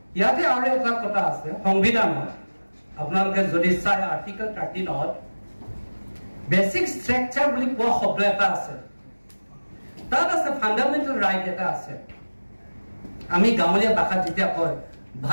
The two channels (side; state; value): both; inverted; correlation -1.00